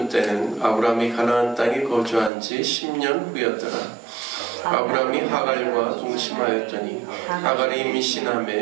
때는 아브라함이 가나안 땅에 거주한 지 10년 후였더라. 아브라함이 하갈과 동침하였더니 하갈이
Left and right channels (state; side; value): drops out; left; at 2.3 s